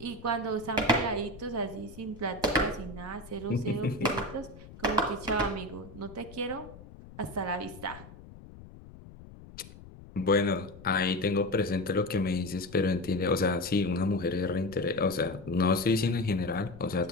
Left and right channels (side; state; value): left; noise; rumble, 18 dB below the sound